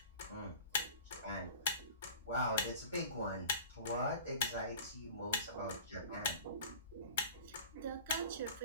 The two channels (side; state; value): both; inverted; correlation -0.40